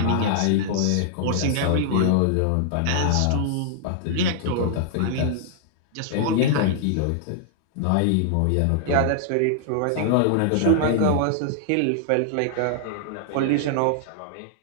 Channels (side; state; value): both; different; correlation -0.01